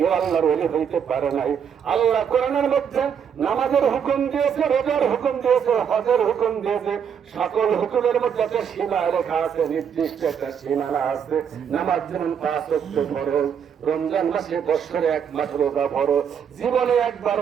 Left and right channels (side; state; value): left; quieter; 7.7 dB